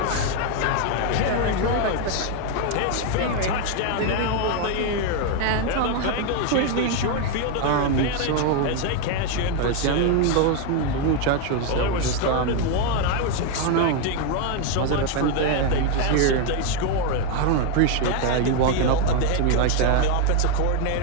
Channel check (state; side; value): different; both; correlation 0.01